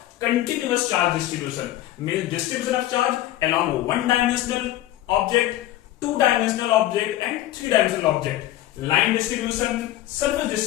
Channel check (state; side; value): quieter; right; 14.5 dB